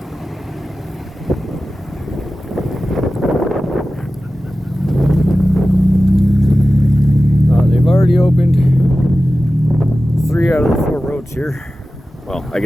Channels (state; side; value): normal; both; correlation 0.95